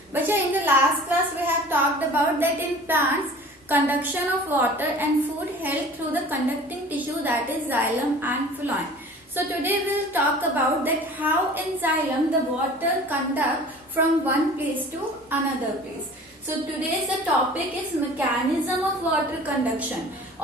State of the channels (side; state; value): both; normal; correlation 0.44